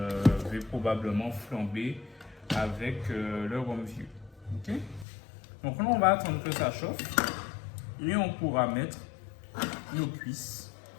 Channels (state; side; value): drops out; right; at 5.1 s